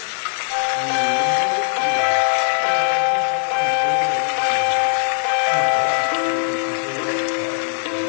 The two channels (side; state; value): right; silent; digital silence